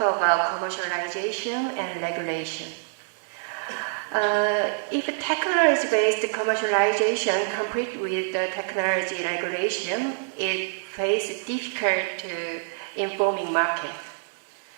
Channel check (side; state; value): left; silent; digital silence